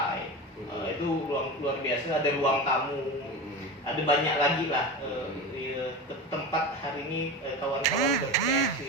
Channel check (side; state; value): both; normal; correlation 0.27